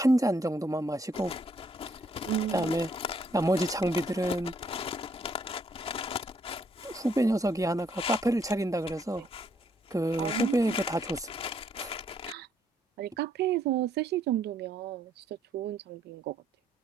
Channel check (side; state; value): both; normal; correlation 0.70